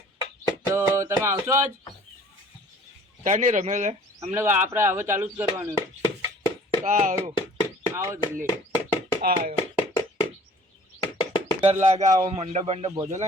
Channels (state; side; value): normal; both; correlation 0.51